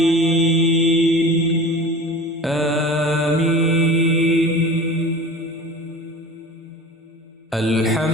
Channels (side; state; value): both; normal; correlation 0.38